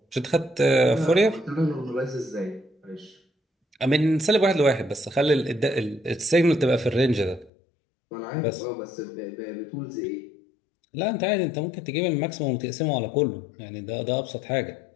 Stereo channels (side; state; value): right; drops out; at 7.5 s